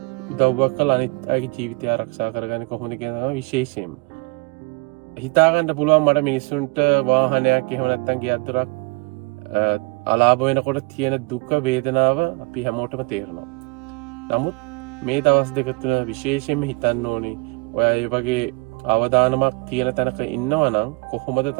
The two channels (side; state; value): left; quieter; 27.1 dB